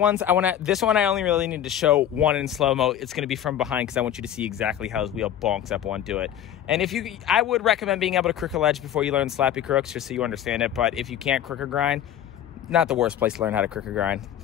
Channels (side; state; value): right; quieter; 10.5 dB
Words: this one I only really need to show one in slow-mo. It's going to be from behind because I want you to see exactly how his wheel bonks up onto it. And I would recommend being able to crook a ledge before you learn Slappy crooks, just so you understand it. But if you can't crook or grind, not the worst place to learn how to crook or grind.